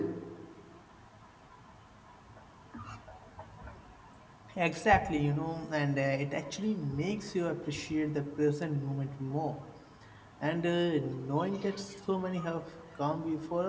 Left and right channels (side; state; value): both; identical; correlation 1.00